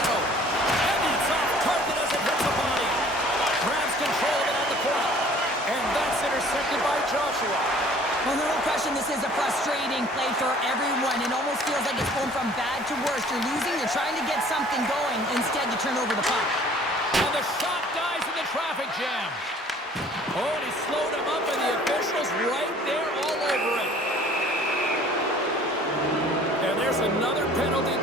And it's off target as it hits the body. Grabs control of it on the corner. And that's intercepted by Joshua. Well, no question, this is a frustrating play for everyone. It almost feels like it's going from bad to worse. You're losing, you're trying to get something going. Instead, you turn over the puck. And the shot dies in the traffic jam. Oh, and he slowed him up, and the official's right there all over it. And there's another penalty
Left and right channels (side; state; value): both; normal; correlation 0.52